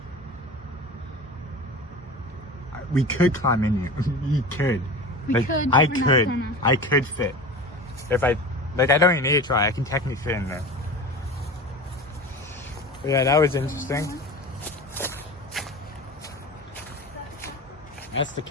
We could climb in here. We could. We could, I but we're not could. gonna. I could fit. If I don't even need to try. I can technically fit in there. But yeah, that was interesting. That's the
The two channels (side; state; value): both; normal; correlation 0.32